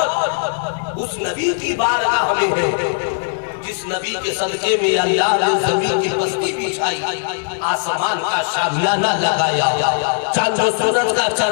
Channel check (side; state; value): right; silent; 58 dB below the other